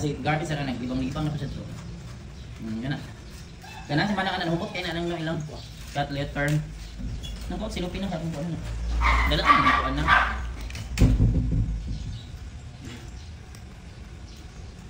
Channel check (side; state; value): both; identical; correlation 1.00